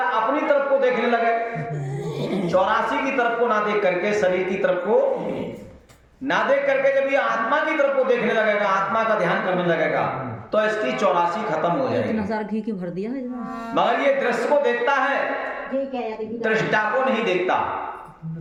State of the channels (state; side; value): identical; both; correlation 1.00